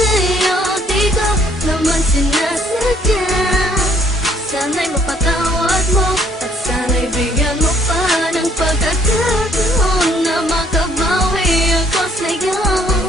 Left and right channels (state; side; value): normal; both; correlation 0.63